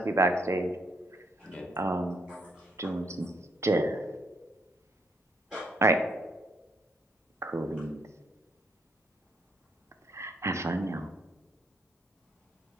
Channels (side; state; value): both; normal; correlation 0.73